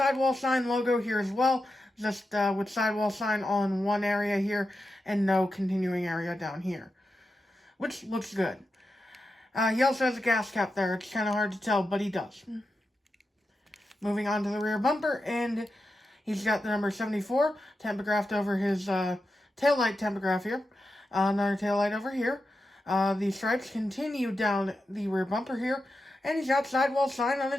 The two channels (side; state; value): both; normal; correlation 0.89